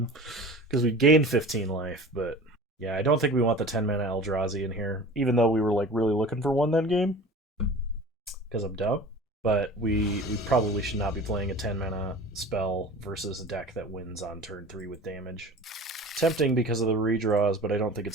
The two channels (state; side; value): normal; both; correlation 0.39